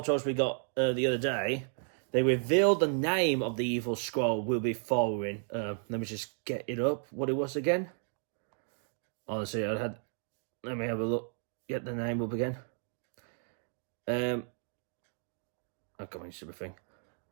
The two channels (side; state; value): left; silent; 56 dB below the other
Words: we got the other day, they revealed the name of the evil Skrull we'll be following. Let me just get it up, what it was again. Honestly, let me have a look, get the name up again. Oh, come on, stupid thing.